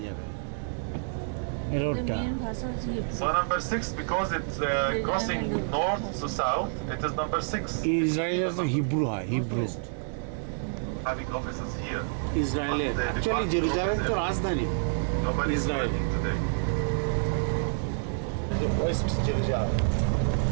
যাবে এই রোডটা So number 6, because it's crossing north to south, it is number 6. ইসরায়েলের তো হিব্রু হয় Hebrew Having offices here. ইসরায়েলের অ্যাকচুয়ালি জেরুজালেম তো রাজধানী Nobody is Israel. working today. West Jerusalem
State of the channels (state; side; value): silent; left; digital silence